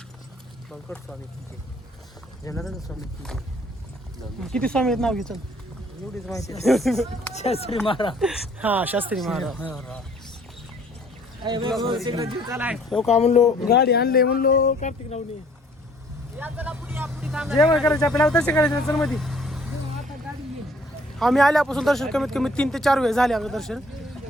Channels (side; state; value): both; normal; correlation 0.58